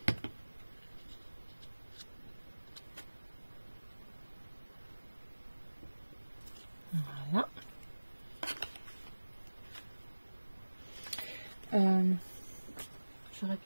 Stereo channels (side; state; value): both; inverted; correlation -1.00